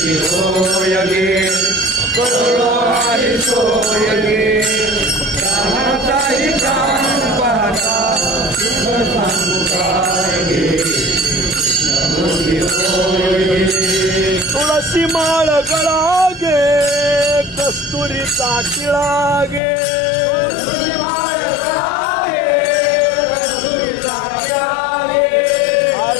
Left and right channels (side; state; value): right; drops out; at 19.6 s